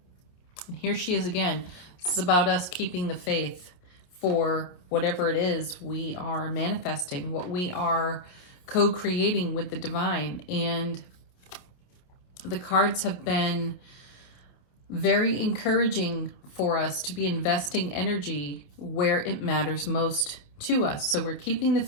And here she is again. This is about us keeping the faith for whatever it is we are manifesting, what we are co-creating with the divine. And the cards have been very encouraging for us to be investing energy where it matters most to us. So we're keeping the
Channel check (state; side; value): late; right; 28 ms